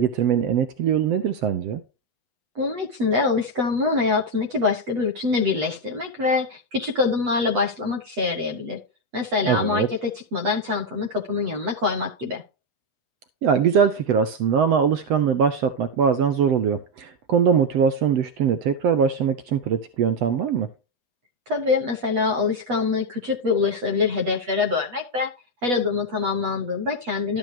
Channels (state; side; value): late; left; 8.1 ms